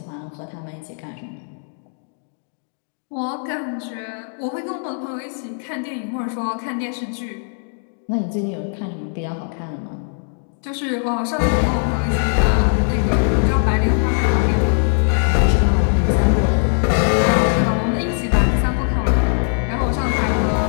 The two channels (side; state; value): right; silent; 65 dB below the other